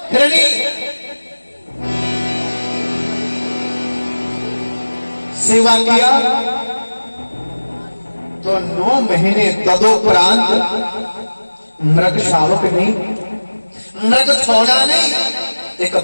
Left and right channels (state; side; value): inverted; both; correlation -1.00